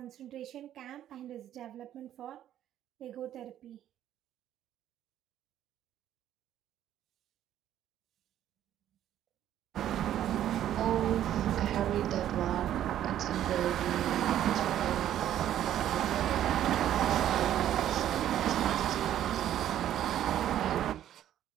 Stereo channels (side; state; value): left; quieter; 11.5 dB